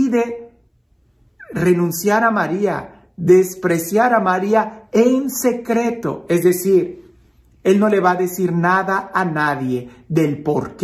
renunciar a María, despreciar a María en secreto. Es decir, él no le va a decir nada a nadie del por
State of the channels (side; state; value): both; identical; correlation 1.00